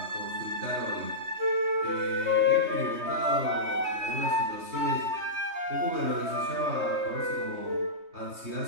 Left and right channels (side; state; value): left; late; 3.2 ms